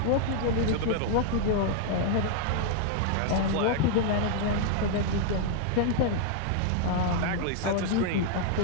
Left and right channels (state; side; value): different; both; correlation 0.00